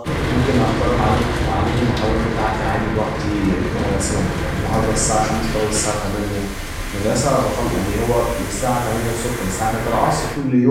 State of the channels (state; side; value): identical; both; correlation 1.00